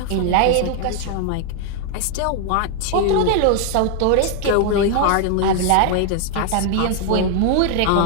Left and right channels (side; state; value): both; different; correlation 0.00